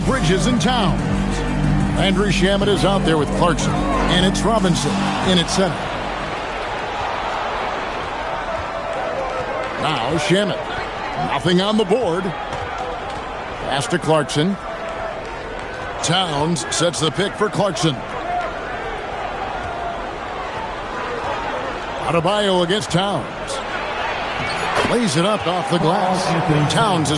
and Towns. Andrew Shamet is out there with Clarkson. And it's Robinson in at center. Now Shamet. Nothing on the board. Pass to Clarkson. Towns sets the pick for Clarkson. Adebayo against Towns. Lays it up off the glass. Towns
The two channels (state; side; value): identical; both; correlation 1.00